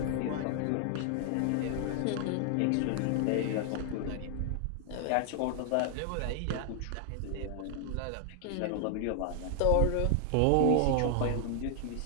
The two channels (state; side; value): different; both; correlation 0.00